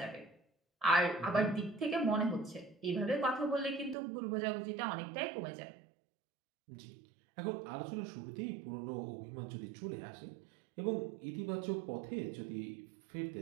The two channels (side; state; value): left; drops out; at 4.0 s